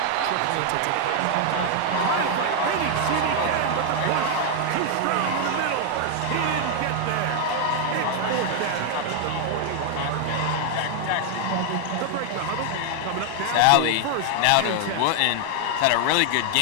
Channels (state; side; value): different; both; correlation 0.00